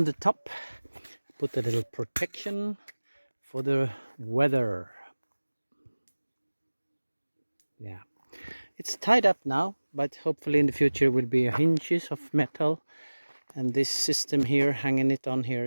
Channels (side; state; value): both; inverted; correlation -1.00